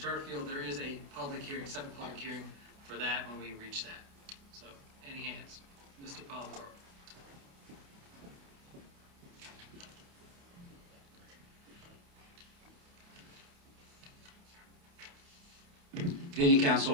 field, there is a public hearing, separate public hearing for that when we reach that. So, any hands? Mr. Polidoro. Good evening,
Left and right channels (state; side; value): late; left; 29 ms